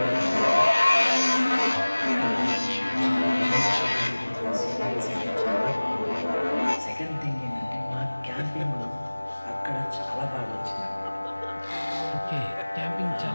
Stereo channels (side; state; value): both; inverted; correlation -1.00